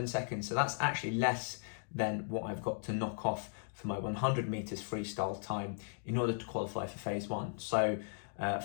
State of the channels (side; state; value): right; silent; digital silence